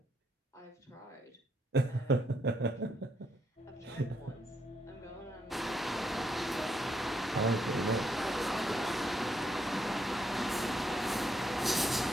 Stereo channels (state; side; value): normal; both; correlation 0.77